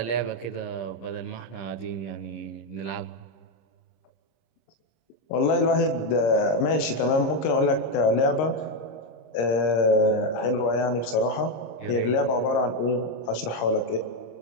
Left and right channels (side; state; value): right; late; 26 ms